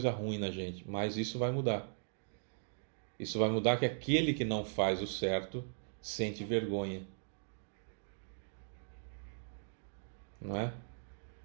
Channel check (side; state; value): left; silent; digital silence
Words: ruim na gente, mas isso vai mudar. Isso vai mudar que aquele que não faz o certo sente vergonha. Não é?